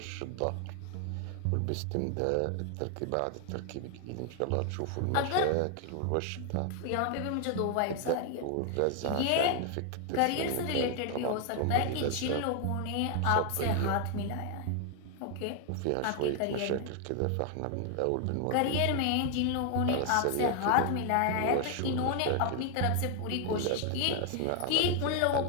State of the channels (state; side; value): different; both; correlation 0.00